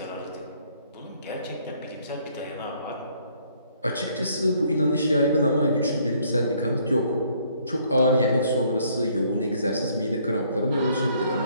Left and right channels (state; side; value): inverted; both; correlation -0.65